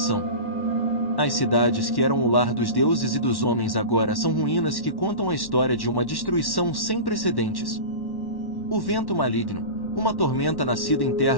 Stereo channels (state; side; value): late; right; 1.1 ms